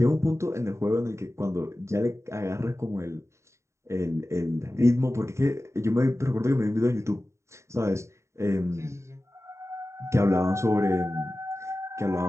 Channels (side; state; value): left; late; 0.14 ms